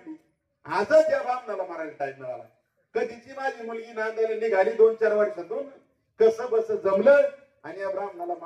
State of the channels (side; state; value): both; identical; correlation 1.00